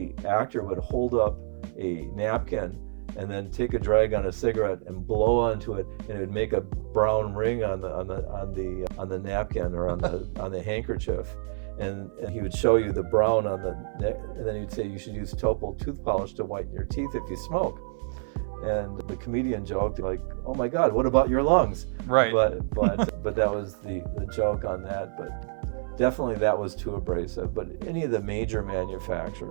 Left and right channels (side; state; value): left; silent; 58 dB below the other